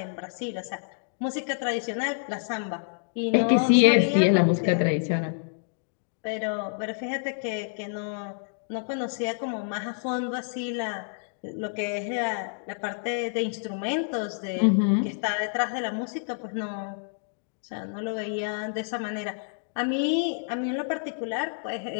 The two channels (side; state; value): right; silent; digital silence